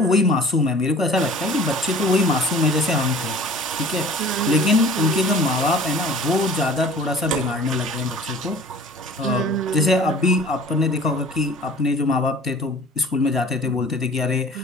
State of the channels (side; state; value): both; normal; correlation 0.46